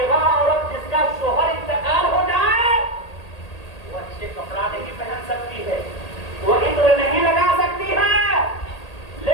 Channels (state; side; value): late; right; 1.8 ms